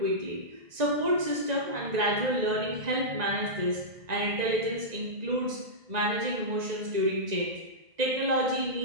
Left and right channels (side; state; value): left; late; 1.9 ms